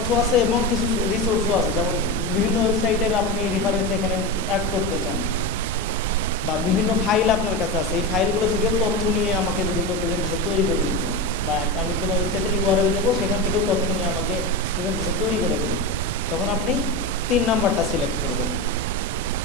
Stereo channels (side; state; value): both; normal; correlation 0.19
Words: আছে এবং কিছু রিসোর্সও আছে, যেমন বিভিন্ন ওয়েবসাইটের আপনি রেফারেন্স এখানে অ্যাড করতে চান, বা বিভিন্ন ফাইল আপনার কাছে আছে, এই ফাইলগুলো থেকেও তথ্য নিয়ে আমাকে যদি কেউ প্রেজেন্টেশন তৈরি করে দিত, বা আমি কোনো ওয়েবসাইটের ইউআরএল দেবো, সেখান থেকেও তথ্য নিয়ে আমাকে প্রেজেন্টেশন তৈরি করে দেবে, তখন আপনি 3 নাম্বারটা সিলেক্ট করবেন।